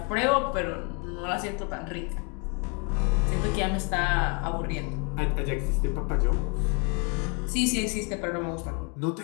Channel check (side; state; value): right; quieter; 35.2 dB